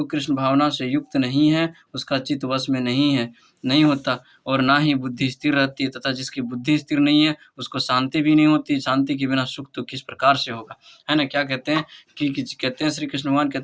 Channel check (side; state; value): both; identical; correlation 1.00